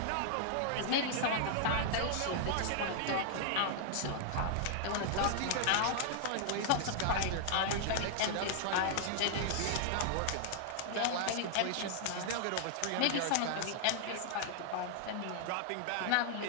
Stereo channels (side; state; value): both; different; correlation -0.01